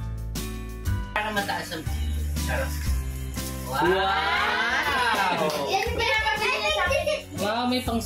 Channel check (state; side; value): identical; both; correlation 1.00